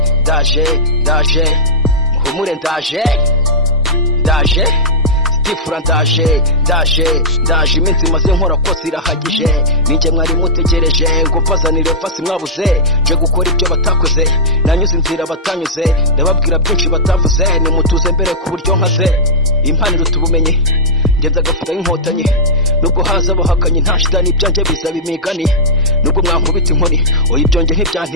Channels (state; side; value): normal; both; correlation -0.11